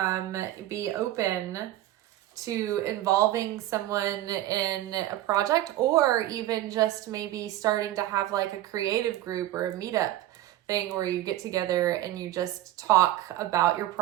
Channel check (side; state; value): left; quieter; 14.5 dB